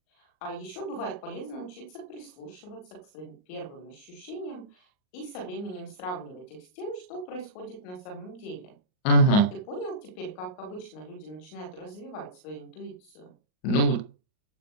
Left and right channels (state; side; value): late; right; 39 ms